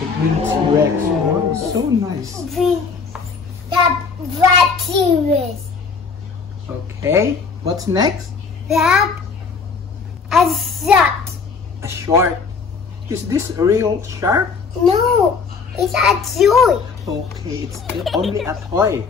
green T-Rex. Wow, so nice. We have Black T-Rex. Okay. What's next? We have a shark. A shark. Is this a real shark? No, it's a toy. Okay, it's only a toy.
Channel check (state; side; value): quieter; right; 5.1 dB